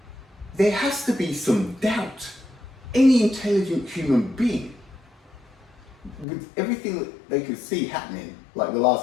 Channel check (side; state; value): right; drops out; at 6.2 s